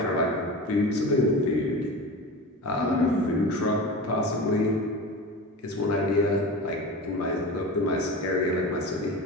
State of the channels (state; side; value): normal; both; correlation 0.30